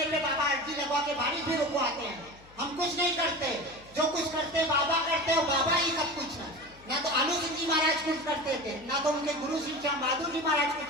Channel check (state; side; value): noise; left; hum, 24 dB below the sound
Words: पे बाबा अर्जी लगवा के बारिश भी रुकवाते हैं। हम कुछ नहीं करते, जो कुछ करते बाबा करते हो, बाबा ही सब कुछ है। ना तो आलू सिंह जी महाराज कुछ करते थे, ना तो उनके गुरु श्री श्याम बहादुर जी महाराज